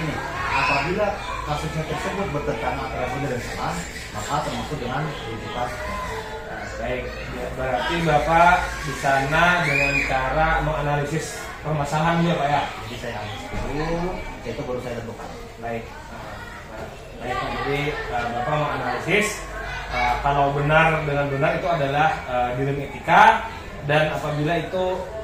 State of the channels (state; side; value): identical; both; correlation 1.00